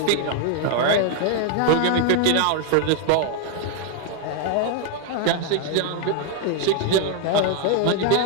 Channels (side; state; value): both; different; correlation 0.01